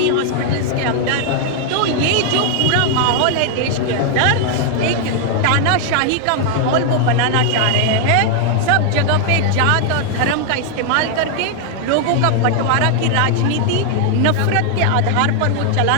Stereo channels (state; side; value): different; both; correlation 0.00